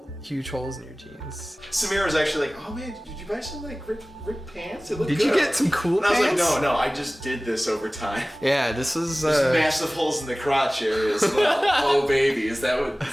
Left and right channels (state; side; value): normal; both; correlation 0.98